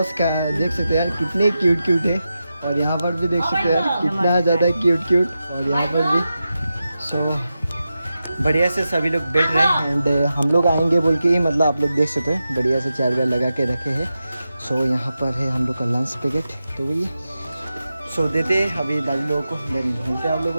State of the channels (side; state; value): both; inverted; correlation -0.91